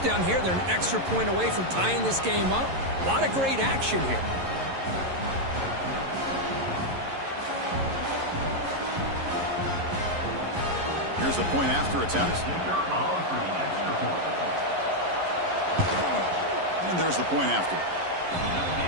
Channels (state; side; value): late; left; 11 ms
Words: here. They're an extra point away from tying this game up. A lot of great action here. Here's the point after attempt. And there's the point after.